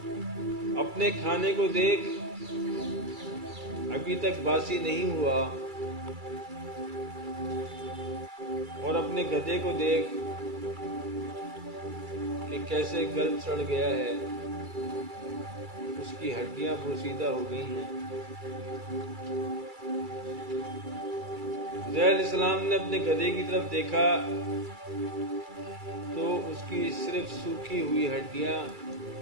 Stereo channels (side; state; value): left; late; 2.3 ms